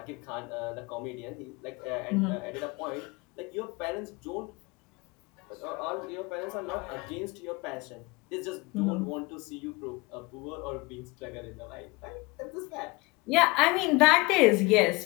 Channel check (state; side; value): quieter; right; 25.0 dB